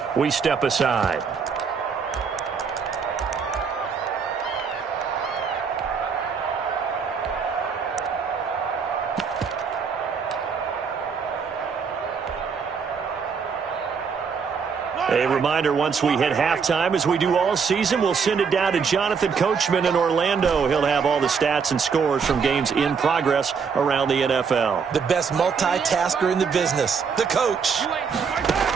we step aside. A reminder, once we hit halftime, as we do all season, we'll send it down to Jonathan Coachman in Orlando. He'll have all the stats and scores from games in progress around the NFL. The best multitasker in the business, the coach.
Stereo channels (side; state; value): left; quieter; 6.0 dB